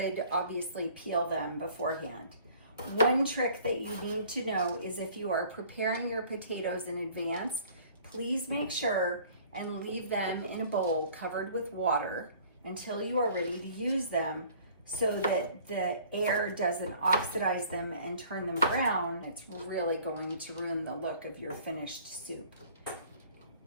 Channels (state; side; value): inverted; both; correlation -0.52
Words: obviously peel them beforehand. One trick that you need to know is if you are preparing your potatoes in advance, please make sure and leave them in a bowl covered with water until you are ready to use them, so that the air doesn't oxidize them and turn them brown. It's really going to ruin the look of your finished soup.